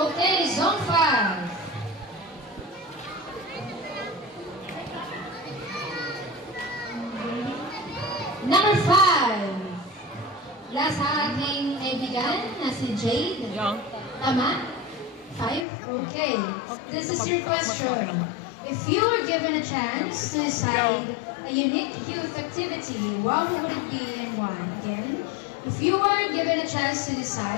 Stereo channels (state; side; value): drops out; right; at 15.7 s